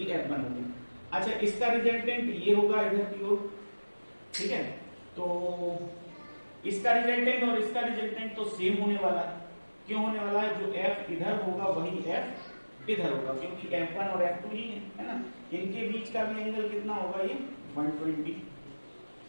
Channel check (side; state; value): both; inverted; correlation -1.00